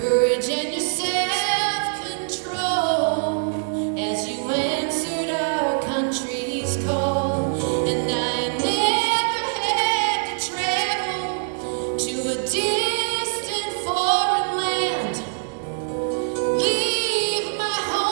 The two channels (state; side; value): silent; left; digital silence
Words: and your self-control as you answered our country's call. And I never had to travel to a distant foreign land, leave my